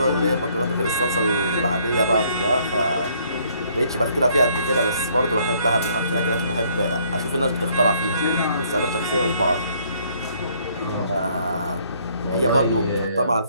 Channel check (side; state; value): both; inverted; correlation -0.65